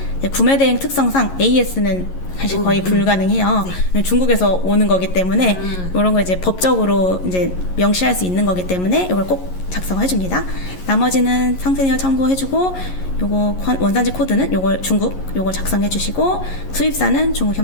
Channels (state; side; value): late; right; 11 ms